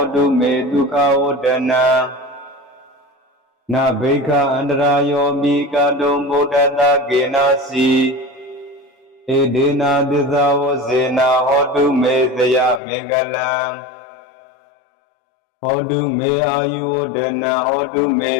ာတုမေဒုက္ခဝဒနံနာဘိက္ခအန္တရာယောပိကာတုံဗုဒ္ဓတာကေနာစီဧဒေနာသစ္စာဝစေနာဟောတုမေဇယမင်္ဂလံဟောတုမေအာယုဝဒနံဟောတုမေ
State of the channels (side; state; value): right; drops out; at 12.8 s